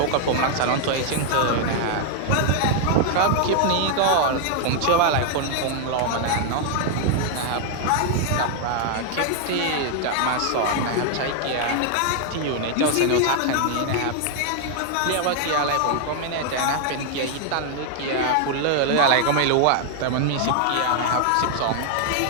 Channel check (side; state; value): both; different; correlation 0.00